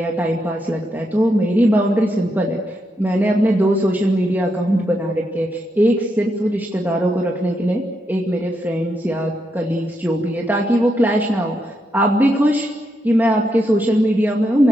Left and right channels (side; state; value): both; normal; correlation 0.81